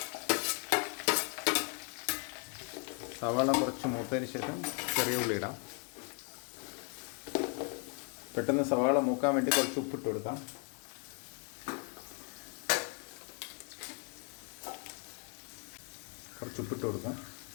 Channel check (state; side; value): quieter; right; 37.8 dB